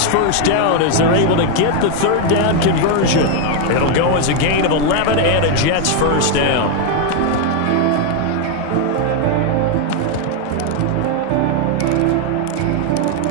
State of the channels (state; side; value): different; both; correlation 0.01